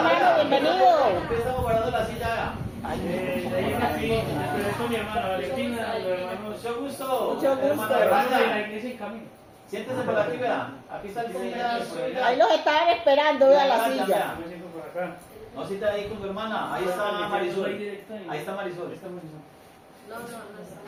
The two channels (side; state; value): both; identical; correlation 1.00